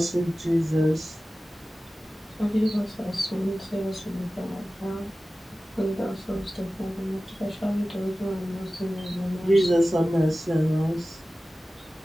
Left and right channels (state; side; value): normal; both; correlation 0.96